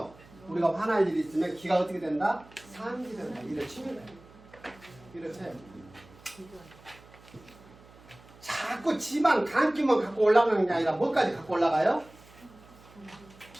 우리가 화날 일이 있으면 기가 어떻게 된다? 상기된다. 이를 치면 돼요. 이를 쳐요. 자꾸 지방 간기만 갖고 올라가는 게 아니라 뭐까지 갖고 올라가요?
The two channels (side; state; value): right; noise; hum, 24 dB below the sound